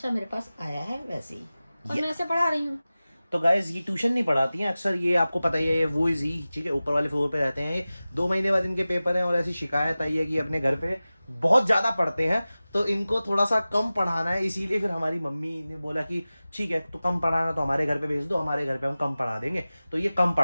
मेरे पास आया है वैसे ही और मैं ऐसे पढ़ा रही हूँ। तो गाइज ये ट्यूशन नहीं पढ़ाती हैं अक्सर, ये आपको पता ही है, ये वो इजी, ठीक है, ऊपर वाले फ्लोर पे रहते हैं। ये 2 महीने बाद इनके पेपर हैं और ऐसी शिकायत आई है कि अपने घर पे बहुत ज्यादा पढ़ते हैं, तो इनको थोड़ा सा कम पढ़ाना है। इसीलिए फिर हमारी मम्मी ने बोला कि ठीक है, तो कम पढ़ाना तो हमारे घर पे भेज दो, हमारे घर पे हम कम पढ़ा देंगे। तो ये कम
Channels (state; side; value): inverted; both; correlation -0.97